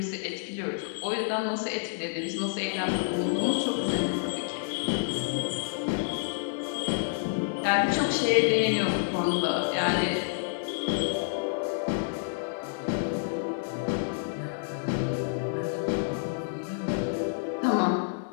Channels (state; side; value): silent; right; digital silence